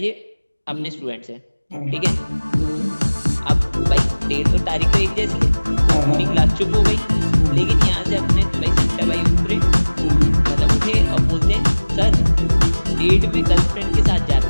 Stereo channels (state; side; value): inverted; both; correlation -1.00